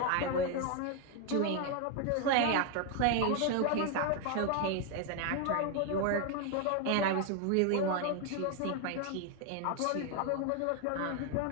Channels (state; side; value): different; both; correlation 0.01